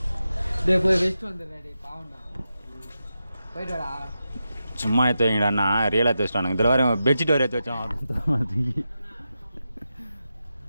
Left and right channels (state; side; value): inverted; both; correlation -0.89